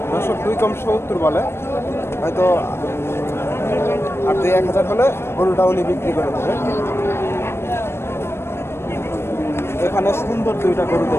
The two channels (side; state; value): right; late; 0.12 ms